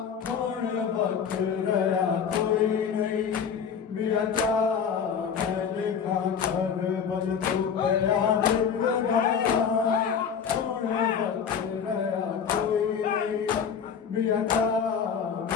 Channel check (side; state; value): right; quieter; 7.0 dB